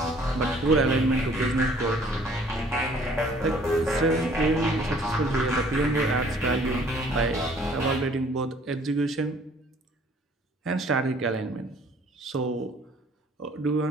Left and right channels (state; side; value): normal; both; correlation 0.57